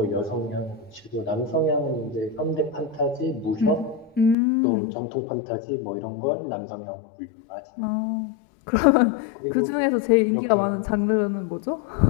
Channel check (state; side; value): drops out; right; at 4.4 s